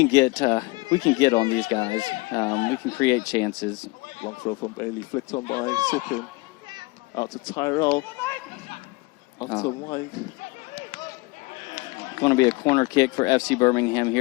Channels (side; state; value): right; quieter; 24.7 dB